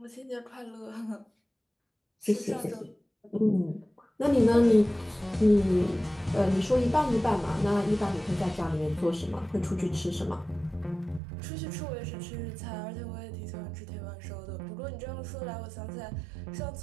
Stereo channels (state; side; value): drops out; left; at 11.2 s